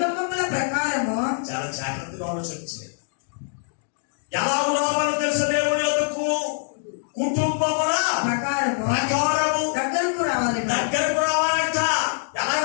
ప్రకారము. చాలా జాగ్రత్త ఎందుకు ఆలోచన చేయాలి? ఎలా రావాలో తెలుసు దేవుని యొద్దకు? కుటుంబముల ప్రకారము దగ్గరకు రావాలి. దగ్గరకు రావాలంట. ఎలా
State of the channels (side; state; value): right; silent; digital silence